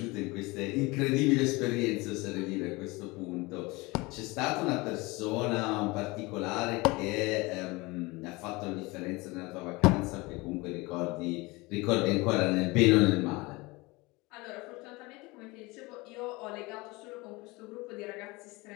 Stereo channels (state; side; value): quieter; right; 23.7 dB